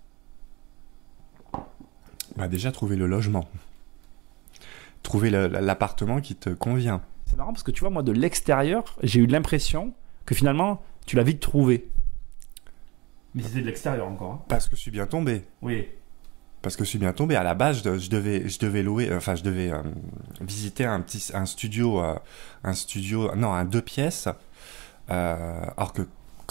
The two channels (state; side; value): quieter; left; 23.4 dB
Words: Déjà, trouver le logement. Trouver l'appartement qui te convient. C'est marrant parce que tu vois, moi, de l'extérieur, j'ai eu l'impression que finalement, tu l'as vite trouvé. Mais c'était de l'extérieur encore. Hein. Parce que je suis bien tombé. Oui. Parce que je suis bien tombé. À la base, je devais louer, je devais visiter un studio, un 2 pièces. Or que